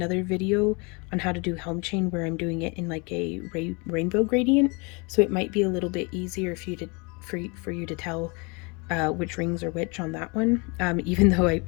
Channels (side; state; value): right; quieter; 30.4 dB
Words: video on how to do Helm chain where I'm doing it in like a rainbow gradient, so it might be a little bit easier for you to tell which rings are which on that one. Even though I